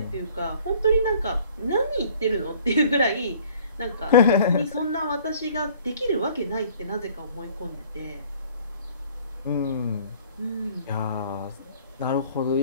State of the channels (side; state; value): both; inverted; correlation -0.54